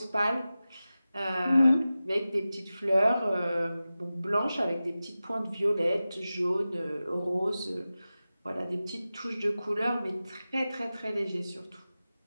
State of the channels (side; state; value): both; inverted; correlation -0.95